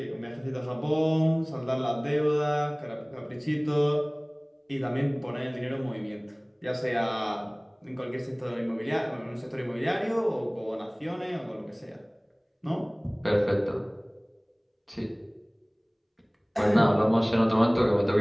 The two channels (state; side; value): identical; both; correlation 1.00